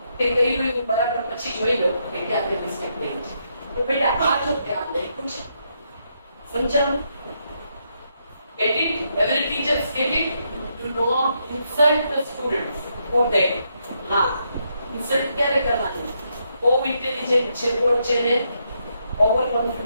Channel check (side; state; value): both; inverted; correlation -0.78